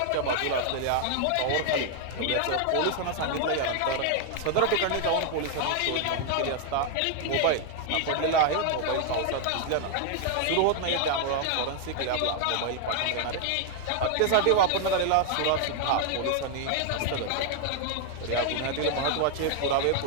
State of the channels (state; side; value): different; both; correlation 0.00